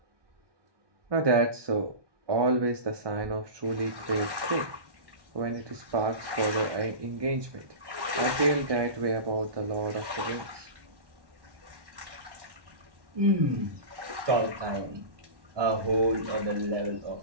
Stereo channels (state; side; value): late; left; 1.2 ms